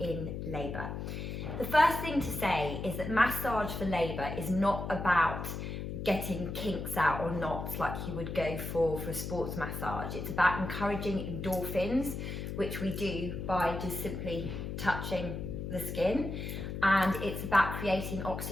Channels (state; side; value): noise; left; hum, 5 dB below the sound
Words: labour. The first thing to say is that massage for labour is not about getting kinks out or knots like you would go for a sports massage. It's about encouraging endorphins, which we do by just simply touching the skin, and it's about creating